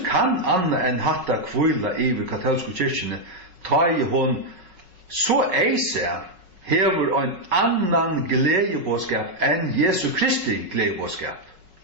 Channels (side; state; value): left; late; 5.4 ms